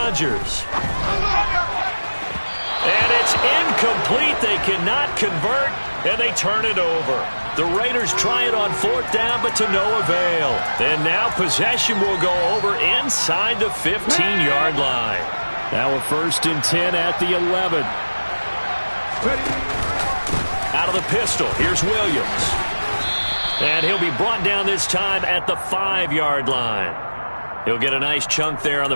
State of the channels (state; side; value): inverted; both; correlation -1.00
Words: And it's incomplete. They cannot convert, and they turn it over. The Raiders try it on 4th down, but to no avail. And now possession will go over inside the 15-yard line. Now a 1st and 10 at the 11. Out of the pistol, here's Williams. And he'll be brought down this time at the 5-yard line. He'll get a nice chunk there on the